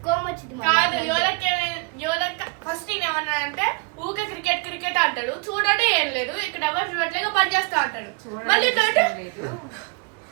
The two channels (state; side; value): quieter; left; 31.2 dB